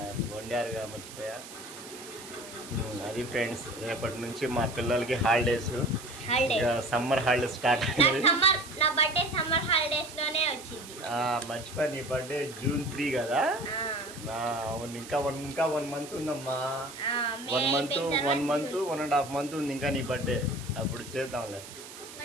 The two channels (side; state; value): right; noise; hiss, 15 dB below the sound